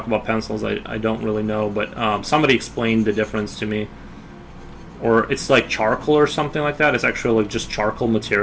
about pencils, I don't really know, but somebody explained the difference to me. Or it's like charcoal or something like that. It's actually like just charcoal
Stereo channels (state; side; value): identical; both; correlation 1.00